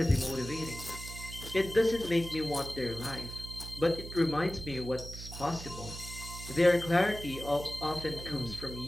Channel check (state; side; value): noise; right; hum, 11 dB below the sound